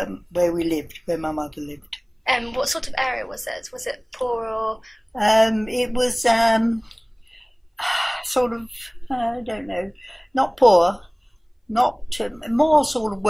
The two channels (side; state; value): both; identical; correlation 1.00